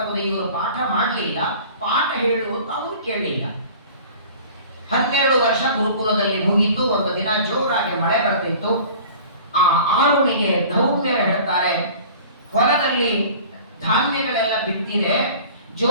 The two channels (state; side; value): inverted; both; correlation -0.44